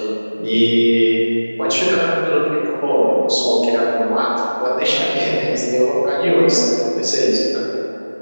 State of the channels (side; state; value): both; inverted; correlation -1.00